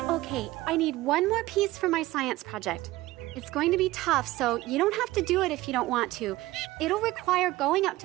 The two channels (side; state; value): left; quieter; 17.8 dB